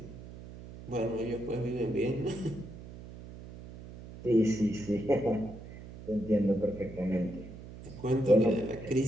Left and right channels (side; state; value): right; noise; hum, 14 dB below the sound